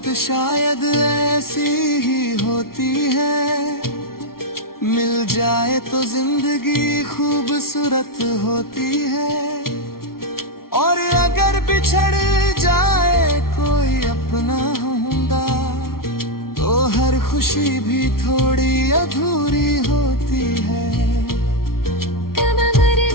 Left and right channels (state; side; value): late; right; 0.93 ms